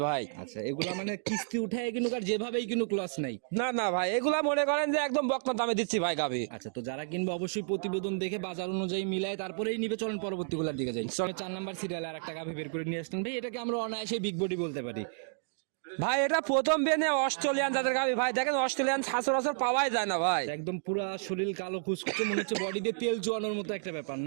ভাই। আচ্ছা, এগুলা মানে কিস্তি উঠায় কিনুক আর যেভাবেই কিনুক লস নাই? না না ভাই, এগুলা মনে করেন যে একদম বকনা দামে দিচ্ছি ভাই গাবি। আচ্ছা, তো যারা কিনবে অবশ্যই প্রতিবেদন দেখে বাজার অনুযায়ী মিলায় তারপরেই নিবে। চলেন পরবর্তী গুলার দিকে যাই। চলে 4 নাম্বার সিরিয়াল আর একটা গাভী বের করে নিয়ে আসলেন ভাই। এটাকে আমরা অনায়াসে বিগ বডি বলতে পারি। ভাই এটা প্রথম বেনে অস্ট্রেলিয়ান জাতের গাবি ভাই। দেখেন অস্ট্রেলিয়ান সচরাচর পাওয়াই যায় না ভাই। একদম পুরা শরীর কালো কুচকুচে, মনে হচ্ছে বডিতে তেল চুয়ানোর মতো একটা ব্যাপার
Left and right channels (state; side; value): silent; left; digital silence